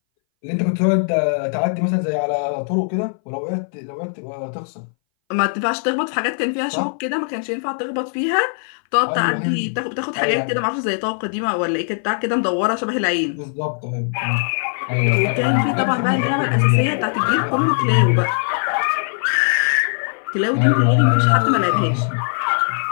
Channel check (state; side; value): silent; right; 61 dB below the other